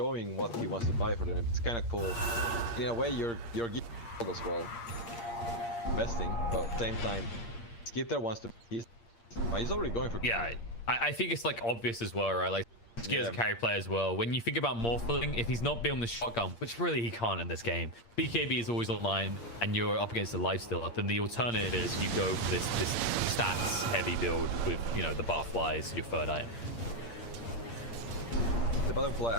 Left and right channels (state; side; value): late; right; 8.6 ms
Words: what he wants to buy for them. It's kind of cool. In a way, you're giving as well. Investing, but at the same time, Skitter wants to. He's already going for. Yeah, I think it's like obvious as well, right? Like Skitter's a carry player as well. When you think about Morphling, if he's not building the shotgun, which really he can't in this game, BKB is always online, and you're up against the Lifestealer. Then the alternative is you go for this stats heavy build with the barflies, your third item. The butterfly,